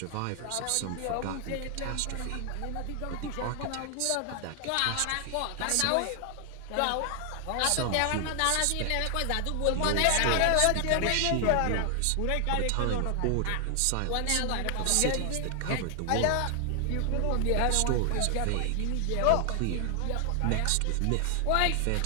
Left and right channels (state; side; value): different; both; correlation 0.00